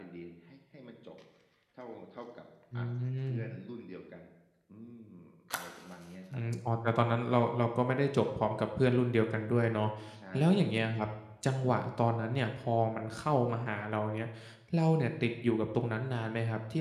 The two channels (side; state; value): both; identical; correlation 1.00